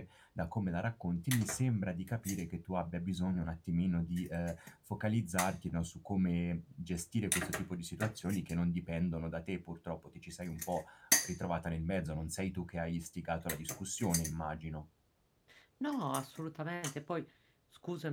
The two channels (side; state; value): both; identical; correlation 1.00